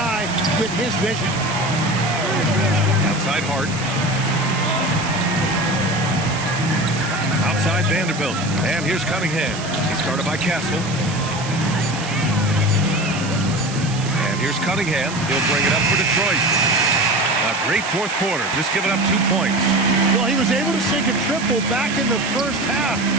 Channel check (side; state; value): right; noise; hiss, 12 dB below the sound